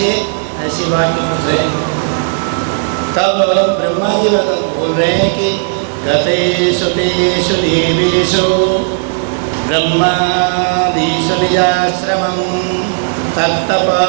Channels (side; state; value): left; silent; digital silence